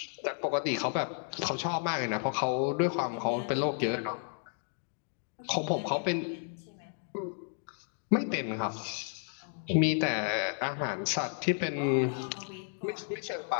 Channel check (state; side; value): silent; right; 56 dB below the other